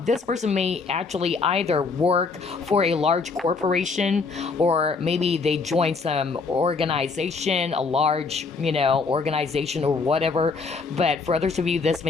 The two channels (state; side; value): quieter; right; 4.5 dB